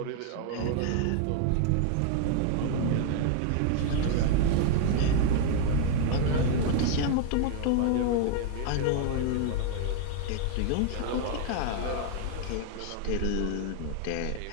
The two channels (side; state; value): both; different; correlation 0.00